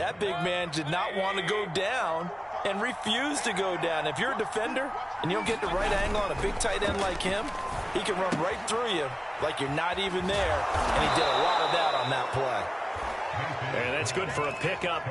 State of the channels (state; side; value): identical; both; correlation 1.00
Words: big man did not want to go down and refused to go down. If you're a defender and you don't get the right angle on a big tight end like him, he can run right through you like you're not even there, and he did a lot of that on that play. And that's good for a pickup